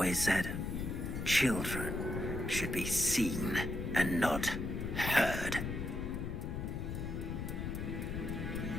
said, children should be seen and not heard.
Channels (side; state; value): left; noise; rumble, 4 dB below the sound